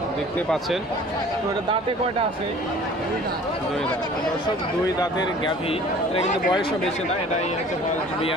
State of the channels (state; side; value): normal; both; correlation 0.48